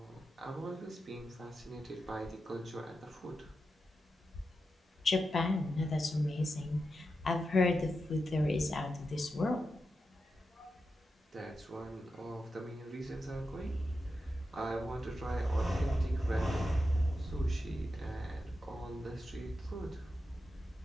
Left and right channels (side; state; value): both; normal; correlation 0.89